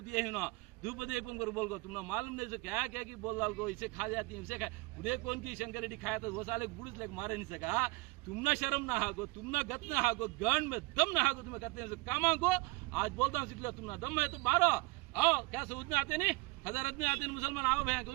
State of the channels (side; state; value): left; quieter; 24.8 dB